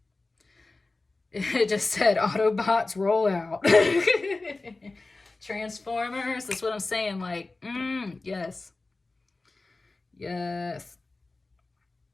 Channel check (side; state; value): right; quieter; 3.4 dB